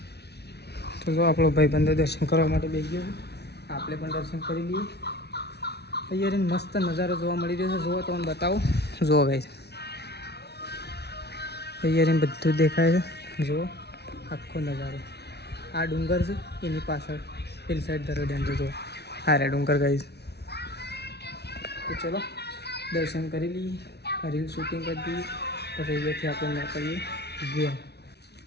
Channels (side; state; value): right; late; 0.49 ms